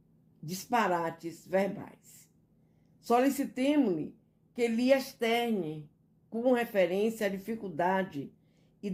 disparates verbais. Solicitemo-lhe que lhe externe com referência à dificuldade e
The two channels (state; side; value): identical; both; correlation 1.00